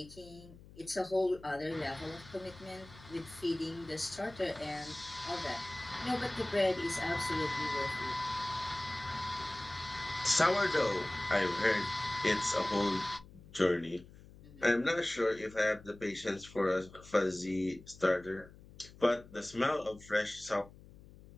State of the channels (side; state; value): left; noise; hum, 20 dB below the sound